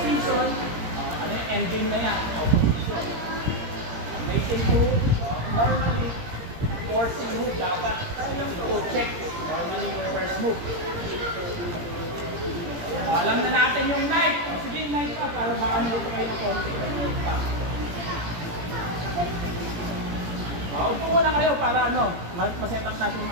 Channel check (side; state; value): left; late; 17 ms